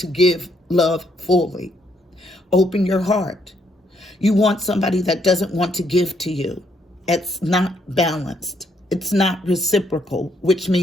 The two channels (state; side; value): normal; both; correlation 0.72